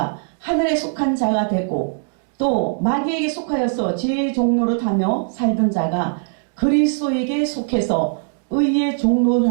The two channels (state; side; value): silent; left; digital silence